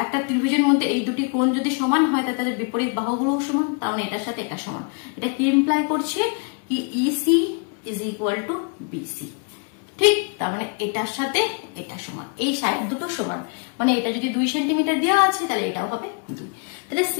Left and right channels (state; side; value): quieter; right; 37.1 dB